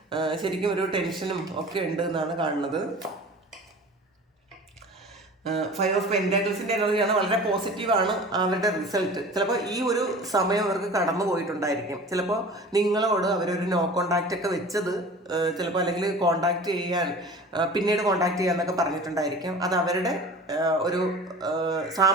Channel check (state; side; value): normal; both; correlation 0.40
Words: ശരിക്കും ഒരു ടെൻഷനും ഒക്കെ ഉണ്ട് എന്നാണ് കാണുന്നത്. 5 ഓഫ് പെന്റാക്കിൾസിൻ്റെ എനർജിയാണ്. വളരെ പോസിറ്റീവാണ് അവരുടെ റിസൾട്ട്. ചിലപ്പോൾ ഈ ഒരു സമയം അവർക്ക് കടന്നു പോയിട്ടുണ്ടായിരിക്കും. ചിലപ്പോൾ നിങ്ങളോട് അവരൊരു നോ കോണ്ടാക്റ്റ് ഒക്കെ വെച്ചത് ചിലപ്പോൾ, അല്ലെങ്കിൽ കോണ്ടാക്ട് ചെയ്യാൻ പിന്നീട് കോണ്ടാക്ട് ചെയ്യാന്നൊക്കെ പറഞ്ഞിട്ടുണ്ടായിരിക്കും. അത് അവരുടെ ഒരു